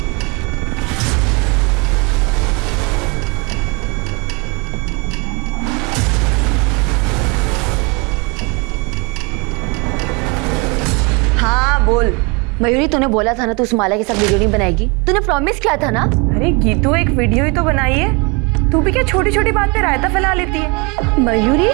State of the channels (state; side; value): quieter; left; 30.0 dB